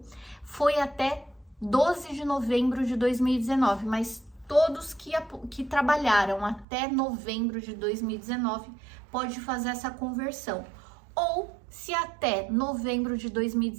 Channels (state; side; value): drops out; left; at 6.7 s